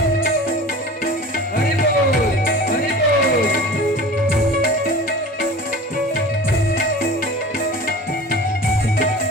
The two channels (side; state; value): both; normal; correlation 0.38